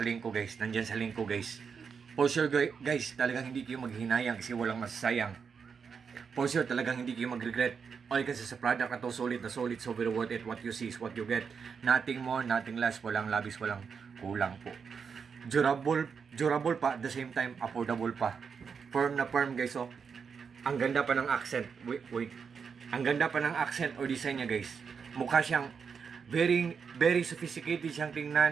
link ko guys, nandyan sa link ko guys. For sure guys, talagang hindi kayo maghinayang kasi walang masasayang. For sure, talagang hindi kayo mag-regret. All kasi sa product na to, solid, so very worth it. What you see is what you get. Nothing more, nothing less. Walang labis, walang kulang po. Durable pa, at the same time, affordable pa. Firm na firm guys, oh. Ang ganda pa ng accent. Wait. Ang ganda pa ng accent or design niya guys. Mukha siyang very sophisticated siyang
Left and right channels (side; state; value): left; quieter; 6.1 dB